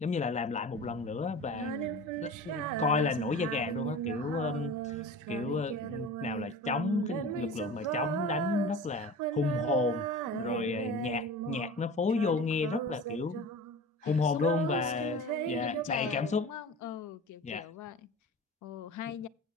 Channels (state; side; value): normal; both; correlation 0.36